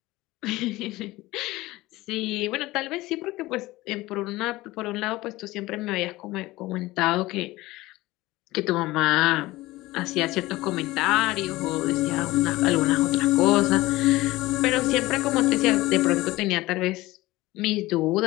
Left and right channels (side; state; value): right; quieter; 18.9 dB